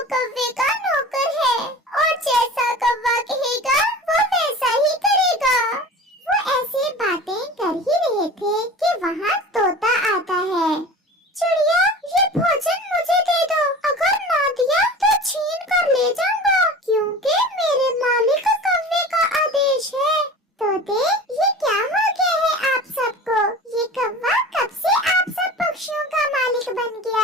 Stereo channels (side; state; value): both; normal; correlation 0.37